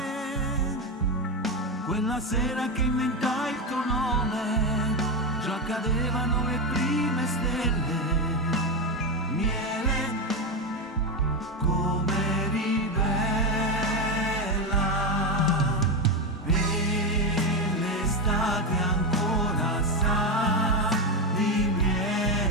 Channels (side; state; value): both; normal; correlation 0.12